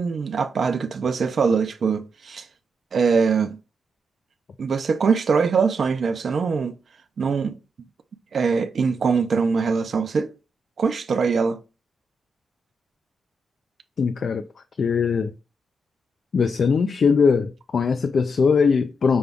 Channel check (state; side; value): normal; both; correlation 0.81